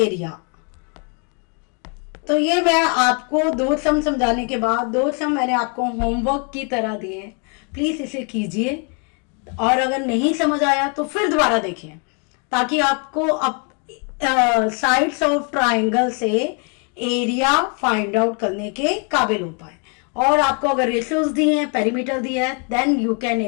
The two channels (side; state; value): right; quieter; 37.4 dB